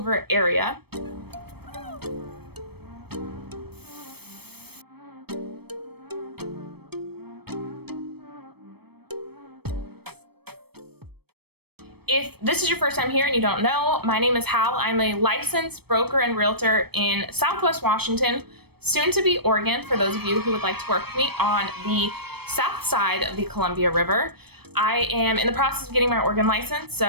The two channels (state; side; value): late; left; 0.97 ms